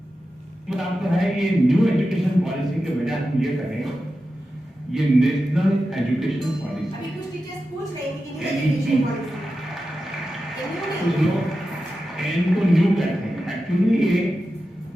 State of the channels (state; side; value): normal; both; correlation 0.91